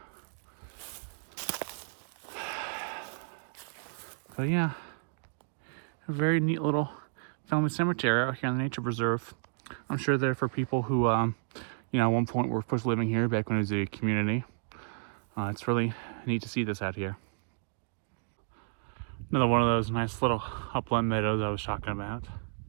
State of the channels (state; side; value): silent; left; digital silence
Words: yeah, a very neat little family cemetery out here in the nature preserve. I'm sure they're for people who, you know, at one point were supposed to living here back when it was a community. It's really neat to see this out here. Another one of those nice little upland meadows I was talking about.